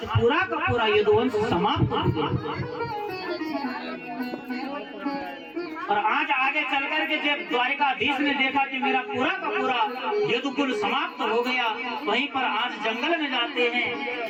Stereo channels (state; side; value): identical; both; correlation 1.00